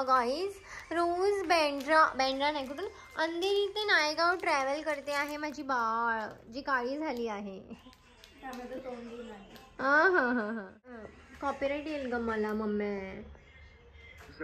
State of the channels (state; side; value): identical; both; correlation 1.00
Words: गाईज. रोज बँड्रा नाही कुठून अंधेरी ते नायगाव ट्रॅव्हल करते आहे माझी बाळ जी काळी झाली आहे. हा हा हा हा कॉपीराइट येईल ग मला मम्मी.